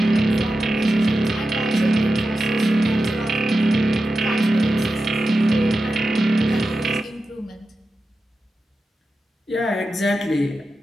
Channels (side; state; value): both; normal; correlation 0.92